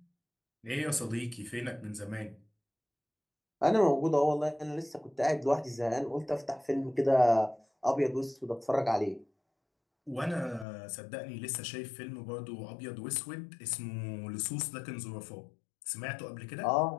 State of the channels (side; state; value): right; drops out; at 10.7 s